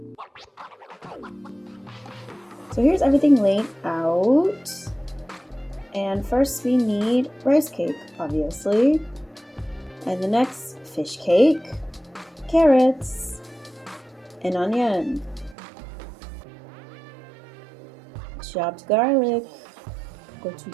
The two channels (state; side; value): drops out; left; at 15.6 s